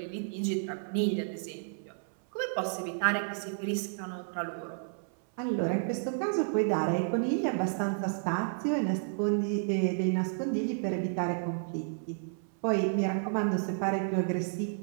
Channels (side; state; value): left; silent; 57 dB below the other